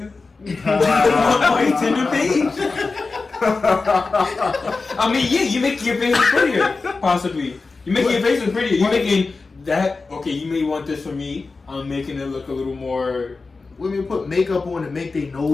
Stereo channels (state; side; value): quieter; right; 4.0 dB